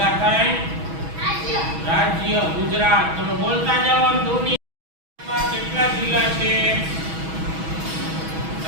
થાય રાજ્ય ગુજરાત. તમે બોલતા જાઓ. દુનિયામાં કેટલા જિલ્લા છે?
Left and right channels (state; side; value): late; left; 6.2 ms